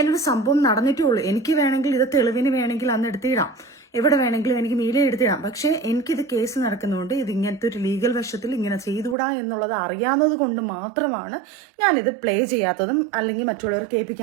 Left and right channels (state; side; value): drops out; left; at 9.2 s